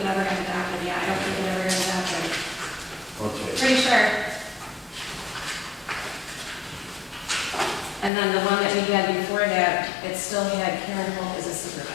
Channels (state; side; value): drops out; right; at 8.1 s